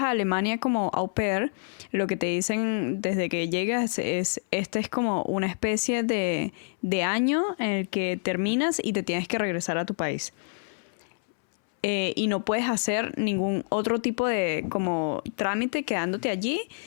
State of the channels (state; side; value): silent; right; 60 dB below the other